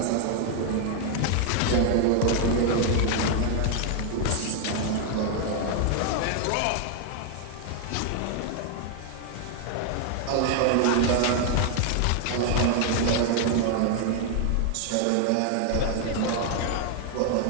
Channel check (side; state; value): both; different; correlation 0.00